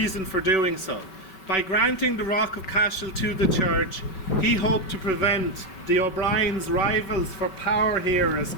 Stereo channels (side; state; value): right; late; 5.3 ms